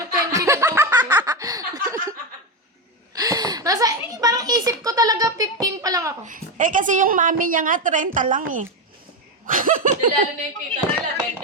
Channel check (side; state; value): both; normal; correlation 0.12